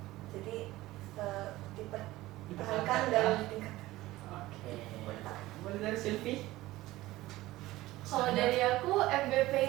Jadi dipertahankan dan ditingkatkan. Oke. Boleh dari Silvi? Kalau dari aku MVP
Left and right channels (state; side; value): quieter; left; 17.5 dB